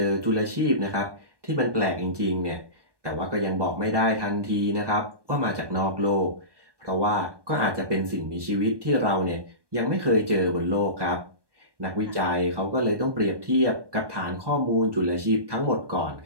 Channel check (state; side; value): late; left; 1.2 ms